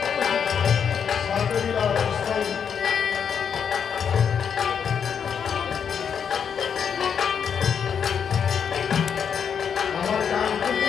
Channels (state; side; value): quieter; right; 7.3 dB